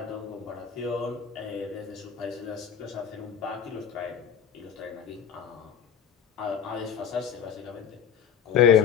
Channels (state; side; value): quieter; right; 8.0 dB